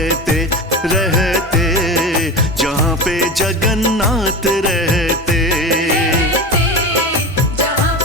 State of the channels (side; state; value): both; normal; correlation 0.27